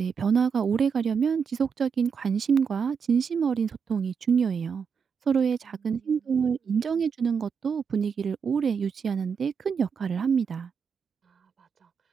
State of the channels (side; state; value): left; quieter; 6.3 dB